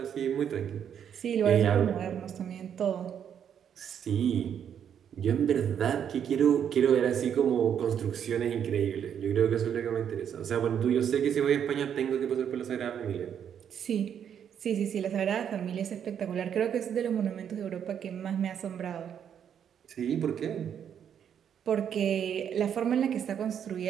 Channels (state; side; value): quieter; left; 8.6 dB